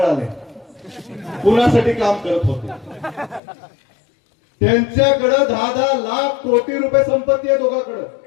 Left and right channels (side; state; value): right; drops out; at 3.4 s